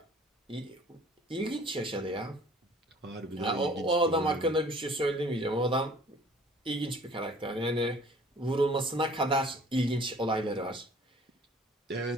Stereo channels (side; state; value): both; normal; correlation 0.52